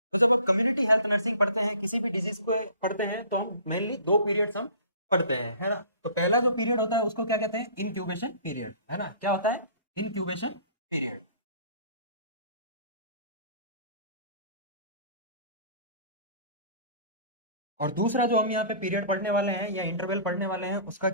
तो जब आप कम्युनिटी हेल्थ नर्सिंग पढ़ते हैं, किसी भी डिजीज को पढ़ते हैं, तो हम मेनली दो पीरियड्स हम पढ़ते हैं, है ना। तो पहला जो पीरियड होता है उसको क्या कहते हैं, इनक्यूबेशन पीरियड, है ना। क्या होता है, इनक्यूबेशन पीरियड। और दूसरा जो हम यहाँ पे पीरियड पढ़ने वाले हैं या इंटरवल पढ़ने वाले हैं, उसका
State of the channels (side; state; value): both; inverted; correlation -0.47